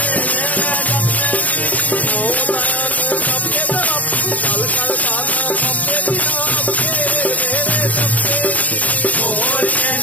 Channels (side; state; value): right; late; 0.074 ms